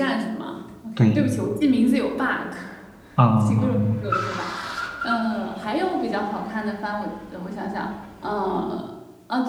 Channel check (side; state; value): both; identical; correlation 1.00